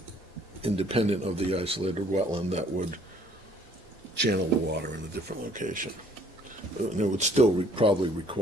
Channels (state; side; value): normal; both; correlation 0.60